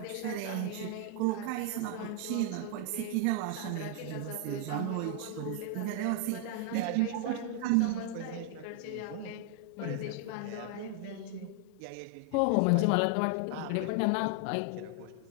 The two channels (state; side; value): different; both; correlation 0.00